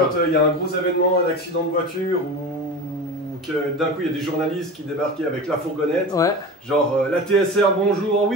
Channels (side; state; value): both; normal; correlation 0.30